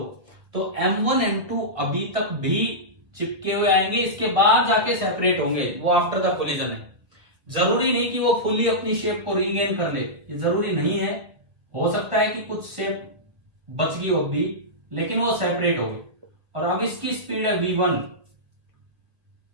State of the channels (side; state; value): left; late; 1.7 ms